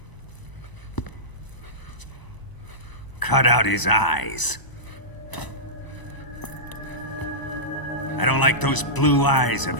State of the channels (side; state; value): right; late; 1.0 ms